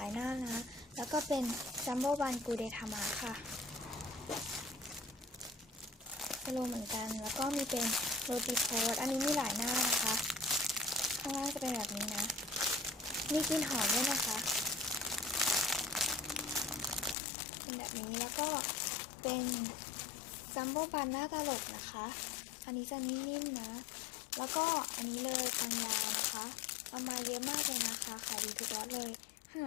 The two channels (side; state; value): right; drops out; at 17.2 s